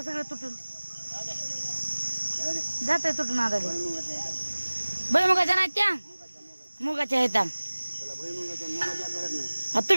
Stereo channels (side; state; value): both; inverted; correlation -1.00